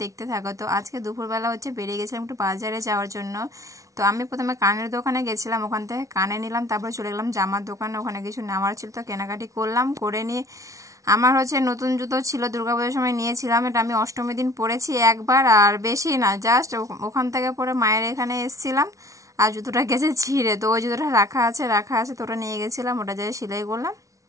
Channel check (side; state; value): left; late; 0.16 ms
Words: দেখতে থাকো। তো আজকে দুপুরবেলা হচ্ছে বেরিয়ে গেছিলাম একটু বাজারে যাওয়ার জন্য। তো আমি প্রথমে কানের দোকানে গেছিলাম, ওখান থেকে কানে নিলাম, তারপর চলে গেলাম জামার দোকানে, ওখানে কিছু নেওয়ার ছিল তো কেনাকাটি করলাম। করে নিয়ে আমার হচ্ছে নতুন জুতো ছিল, দুর্গাপুজোর সময় নিয়েছিলাম, এটা আমি অষ্টমী দিন পরেছি একবার, আর বেশি না, জাস্ট ওখান থেকে পরে মায়ের এখানে এসেছিলাম আর জুতোটা গেছে ছিঁড়ে। তো ওই জুতোটা রাখা আছে তো ওটা নিয়ে গেছিলাম, ওটা যাই সেলাই করলাম।